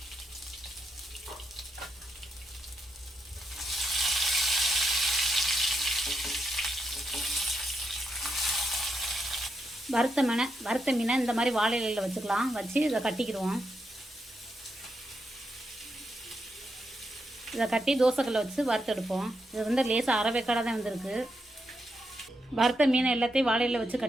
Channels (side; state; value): both; normal; correlation 0.83